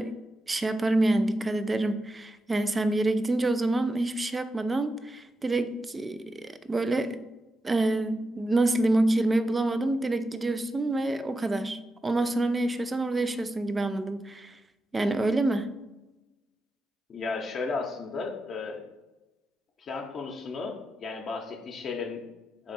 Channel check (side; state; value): both; normal; correlation 0.89